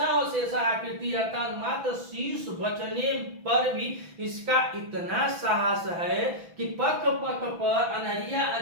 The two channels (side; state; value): left; late; 6.0 ms